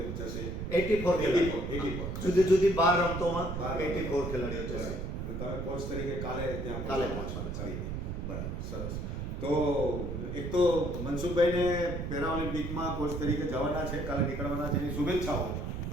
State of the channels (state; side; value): noise; right; rumble, 4 dB below the sound